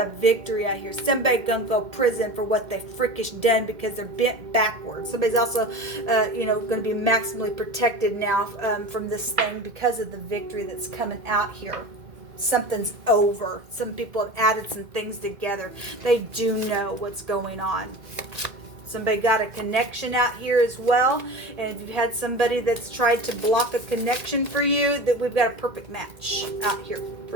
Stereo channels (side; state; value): left; late; 2.1 ms